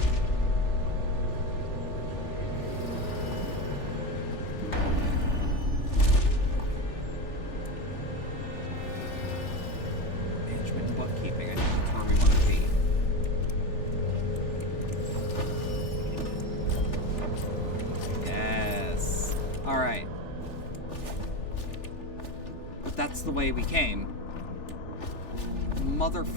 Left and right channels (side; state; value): right; late; 3.4 ms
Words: Bookkeeping, I think that's where we want to be. Yes. Alright. But that's the way we came.